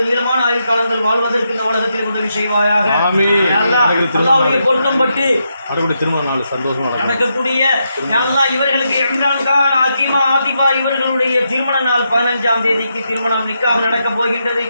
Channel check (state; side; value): inverted; both; correlation -0.82